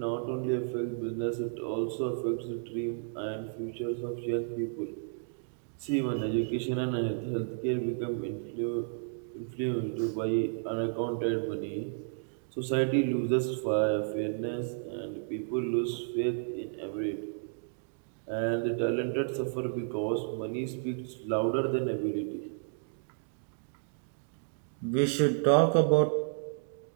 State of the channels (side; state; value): left; silent; digital silence